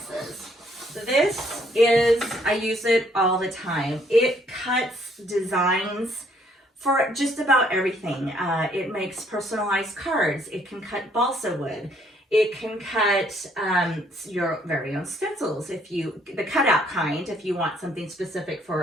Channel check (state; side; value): normal; both; correlation 0.67